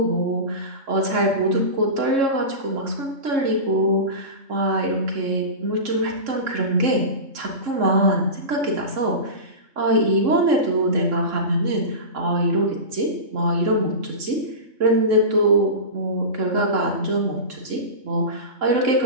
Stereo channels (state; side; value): late; left; 3.7 ms